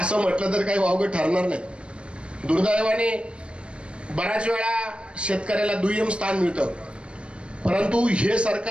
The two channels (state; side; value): late; left; 0.058 ms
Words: म्हटलं तर काही वावगं ठरणार नाही। दुर्दैवाने बऱ्याच वेळा शेतकऱ्याला दुय्यम स्थान मिळतं, परंतु हे